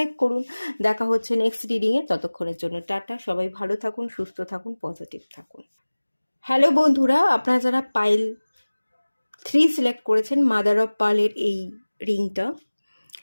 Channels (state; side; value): inverted; both; correlation -1.00